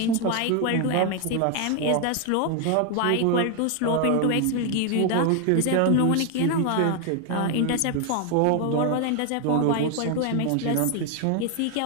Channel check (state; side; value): different; both; correlation 0.01